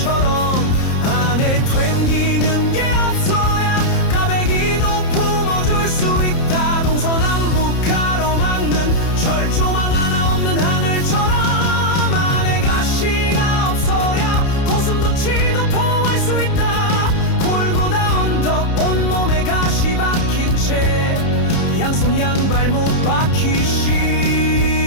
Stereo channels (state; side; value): late; right; 30 ms